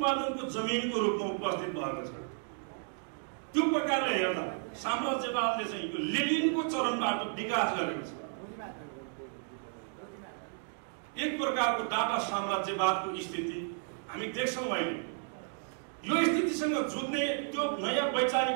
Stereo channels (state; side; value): silent; left; 56 dB below the other